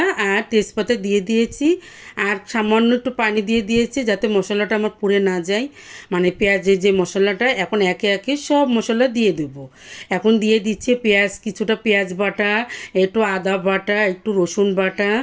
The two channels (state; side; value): identical; both; correlation 1.00